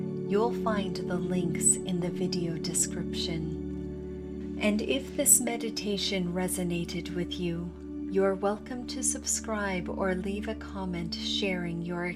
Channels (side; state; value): both; identical; correlation 1.00